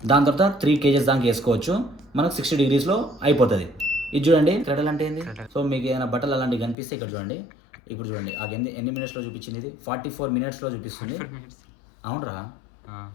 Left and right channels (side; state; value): right; drops out; at 6.8 s